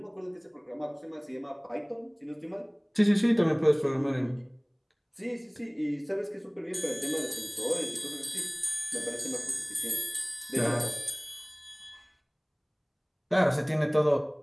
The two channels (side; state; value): both; identical; correlation 1.00